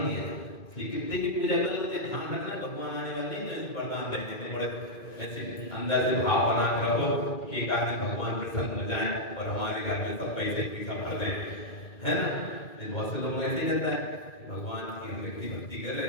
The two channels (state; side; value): late; right; 2.1 ms